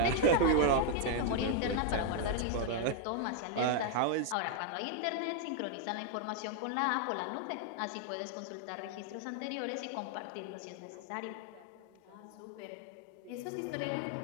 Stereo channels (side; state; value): both; different; correlation 0.01